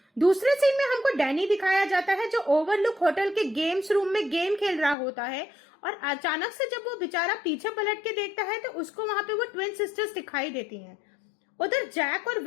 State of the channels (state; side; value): drops out; right; at 5.0 s